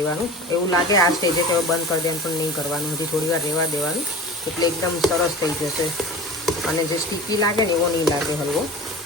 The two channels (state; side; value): normal; both; correlation 0.36